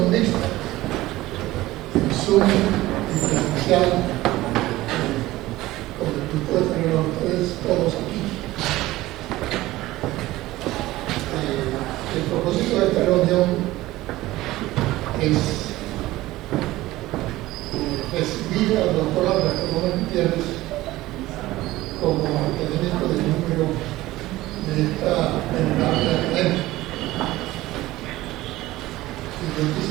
mixta, en Zoom y presencial, con el grupo de tener a ustedes todos aquí. El propósito de esta reunión es recibir al doctor Alberto Gómez Gutiérrez como académico de número de esta venerable academia. Y yo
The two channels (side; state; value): left; quieter; 17.3 dB